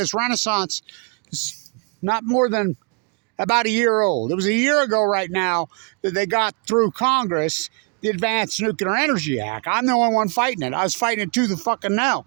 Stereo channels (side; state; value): left; quieter; 36.2 dB